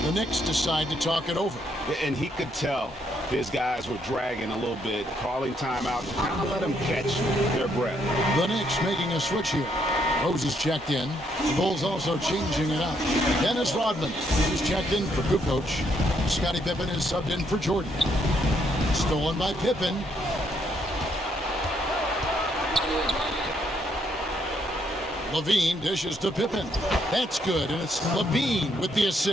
The Knicks decide to talk it over. And he could tell his guys were dragging a little bit, calling timeout to kind of let them catch their breath. The Knicks making a switch here. Rose is checked in. The Bulls also changing it up. Dennis Rodman is checked in for Kukoc. Scottie Pippen is subbed in for Jordan. Stolen by Pippen. Levine dishes to Pippen. That's good, and it's Levine with the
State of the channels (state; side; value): normal; both; correlation 0.73